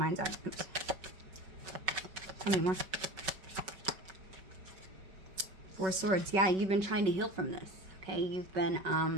eye. Oops. Tell me more. Four Swords. Yeah, you've been trying to heal from this. Okay, you've been,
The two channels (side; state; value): left; late; 5.3 ms